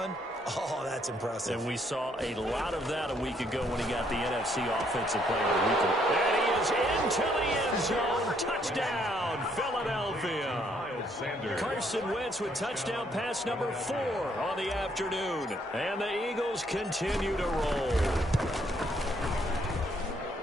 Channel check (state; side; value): normal; both; correlation 0.69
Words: Oh, that's impressive. And we saw a lot of that a week ago when he got the NFC Offensive Player of the Week. And he is into the end zone. Touchdown, Philadelphia. Carson Wentz with touchdown pass number 4 on the afternoon. And the Eagles continue to roll.